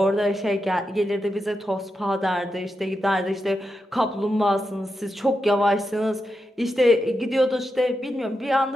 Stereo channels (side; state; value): both; normal; correlation 0.87